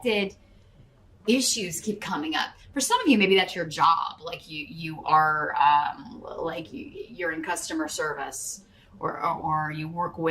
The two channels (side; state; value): both; identical; correlation 1.00